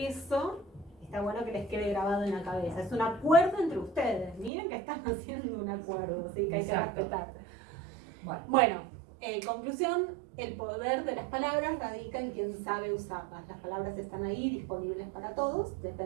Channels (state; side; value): drops out; left; at 4.5 s